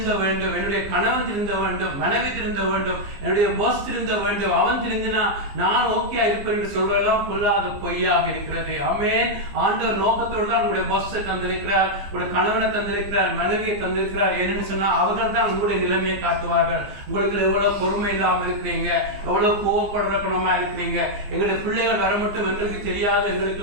வேண்டும், என்னுடைய கணவன் திருந்த வேண்டும், மனைவி திருந்த வேண்டும், என்னுடைய பாஸ் திருந்த வேண்டும், அவன் திருந்தினா நான் ஓகே இருப்பேன் என்று சொல்றதெல்லாம் பொல்லாத பொய்யாக இருக்கிறது. ஆமென். ஆண்டவர் நோக்கத்தோடு தான் உங்களுடைய பாஸை தந்திருக்கிறார், உங்களுடைய கணவனை தந்திருக்கிறார், மனைவியை தந்திருக்கிறார். ஏன்னு சொன்னா அவர்கள் தான் உங்களுடைய நிலைமையை காட்டுவார்கள். உங்களுக்கு எவ்வளவு பொறுமை இல்லாம இருக்கிறீங்க, எவ்வளவு கோவப்படுற குணமா இருக்கிறீங்க, எங்களுடைய பிள்ளைகள் வர மட்டும் எங்களுக்கு தெரியாது,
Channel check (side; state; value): left; late; 15 ms